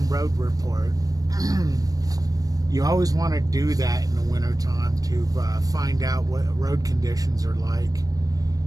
road report. You always want to do that in the wintertime to find out what road conditions are like.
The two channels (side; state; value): left; late; 0.18 ms